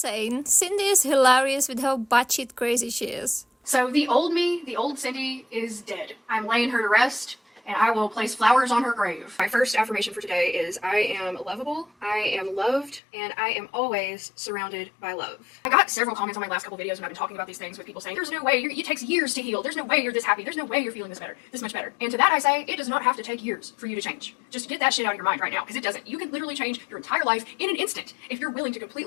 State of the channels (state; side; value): drops out; right; at 13.0 s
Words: Cindy is hilarious with how batshit crazy she is. So the old me, the old Cindy, is dead. I'm laying her to rest, and I will place flowers on her grave. My first affirmation for today is I am lovable, I am loved, and I am always surrounded by love. I got several comments on my last couple videos when I've been talking about these things with people saying, there's no way, it takes years to heal, there's no way you're this happy, there's no way you're feeling this much better. And to that I say, it does not have to take years for you to change. Just get that shit out of your mind right now, because it doesn't. You can literally change your entire life in an instant if you're willing to